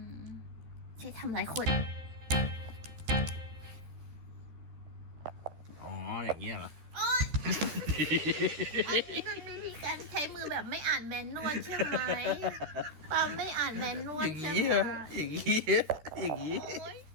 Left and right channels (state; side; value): late; left; 14 ms